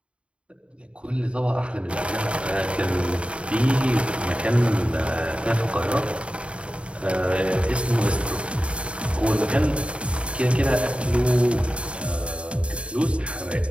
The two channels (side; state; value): left; late; 0.060 ms